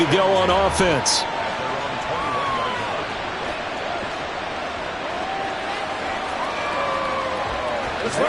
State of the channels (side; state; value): both; identical; correlation 1.00